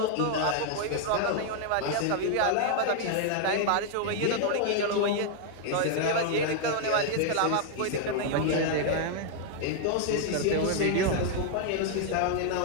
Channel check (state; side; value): different; both; correlation 0.00